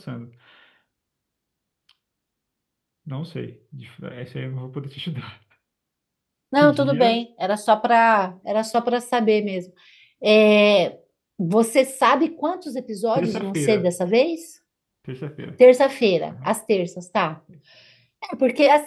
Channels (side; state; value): both; identical; correlation 1.00